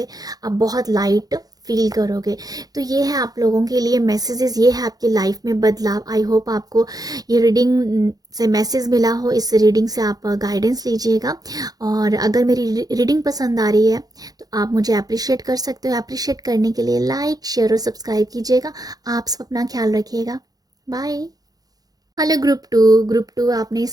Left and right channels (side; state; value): left; late; 0.18 ms